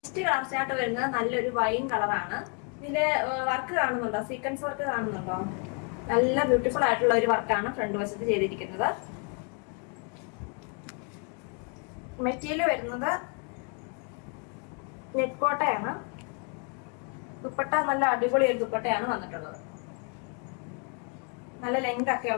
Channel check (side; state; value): right; quieter; 37.5 dB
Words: Next colour chart വരുന്നത് നല്ലൊരു വൈൻ കളറാണ്. ഇതില് വർക്ക് കാണുന്നുണ്ടോ? സീക്വൻസ് വർക്ക് കാണുന്നുണ്ടോ? നല്ല ബ്യൂട്ടിഫുൾ ആയിട്ടുള്ള ഒരു വർക്കാണ് ഫ്രണ്ട് വശത്ത് ചെയ്തിരിക്കുന്നത്. മെറ്റീരിയൽ വരുന്നത് നെറ്റ് കോട്ടയാണ്. ദുപ്പട്ട നല്ല അടിപൊളി ഒരു ദുപ്പട്ടയാണ് വന്നിട്ടുള്ളത്. നല്ല ലെങ്ത്